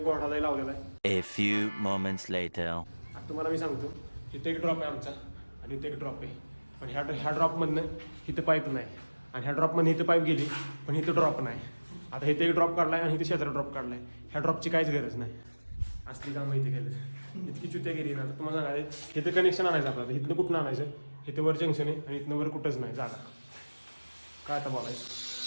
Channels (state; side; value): inverted; both; correlation -1.00